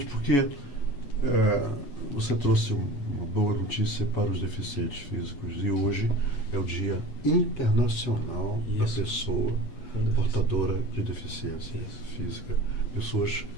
porque você trouxe uma boa notícia para os deficientes físicos. E hoje é o Dia Internacional da Pessoa Portadora de Deficiência Física. Pessoas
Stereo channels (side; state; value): right; late; 8.2 ms